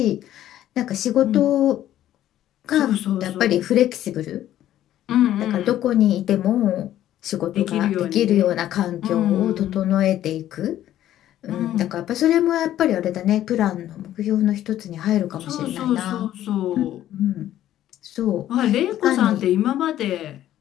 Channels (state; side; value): quieter; right; 12.5 dB